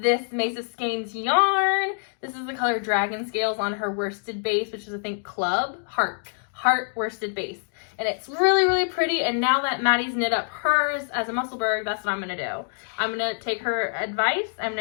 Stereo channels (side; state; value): right; silent; digital silence